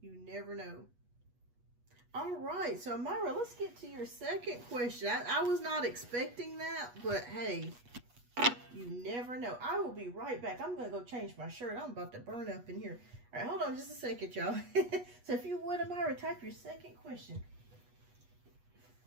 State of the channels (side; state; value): left; late; 8.3 ms